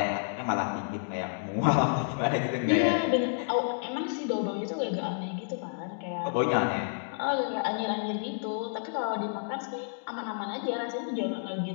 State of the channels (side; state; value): right; silent; digital silence